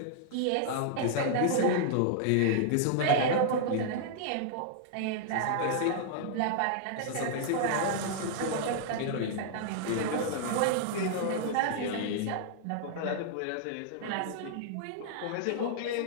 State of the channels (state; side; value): different; both; correlation -0.01